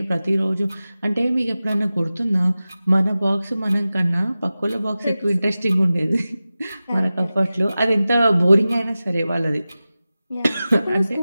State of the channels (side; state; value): both; inverted; correlation -0.95